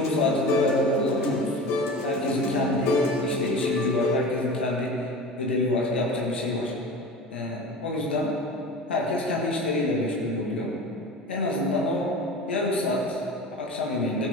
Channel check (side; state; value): both; normal; correlation 0.33